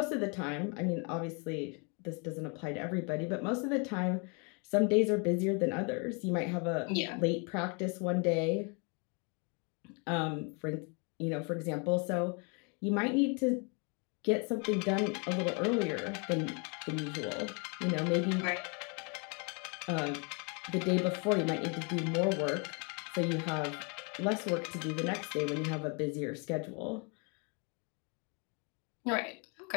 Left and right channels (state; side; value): quieter; right; 34.5 dB